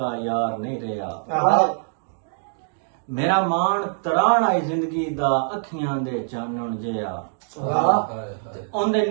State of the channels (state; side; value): silent; left; digital silence